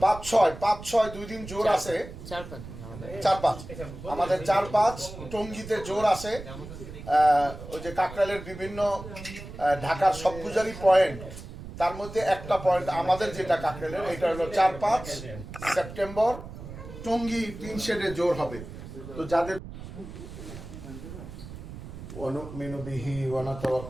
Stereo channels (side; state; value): right; noise; rumble, 12 dB below the sound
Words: 5-6 2 দিন জোর আছে, 4-5 আমাদের 4-5 টঙ্গীতে জোর আছে। ওই যে কাকরাইলের বিভিন্ন ঢাকার সবগুজারি পয়েন্ট, তার মধ্যে একটা পয়েন্ট আমাদের যেটা কাকরাইলের, এটা হলো 4-5 সেপ্টেম্বর টঙ্গী 3 শেডে জোর হবে। তো যাদের ونؤمن به